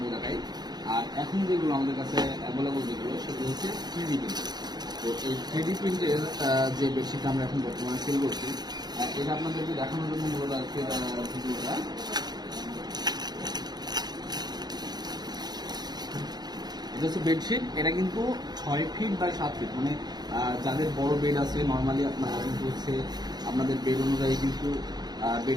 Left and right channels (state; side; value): late; left; 0.20 ms